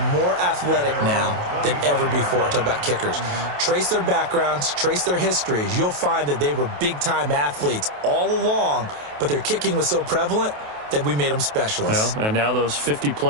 more athletic now than ever before. Talk about kickers. Trace their backgrounds, trace their histories. You'll find that they were big-time athletes all along, but their kicking was so prevalent that we made them specialists. Well, and now those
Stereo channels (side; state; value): left; late; 28 ms